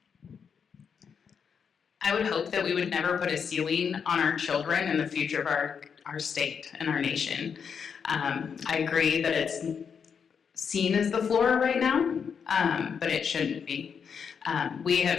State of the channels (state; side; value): quieter; right; 6.7 dB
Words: I would hope that we would never put a ceiling on our children and the future of our state and our nation. I agree that it's seen as the floor right now, but it shouldn't be. We